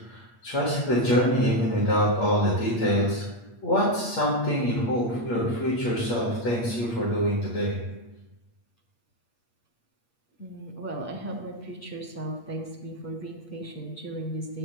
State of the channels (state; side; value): late; right; 8.5 ms